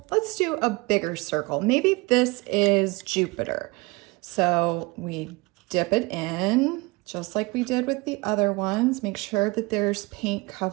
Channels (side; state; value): left; quieter; 24.9 dB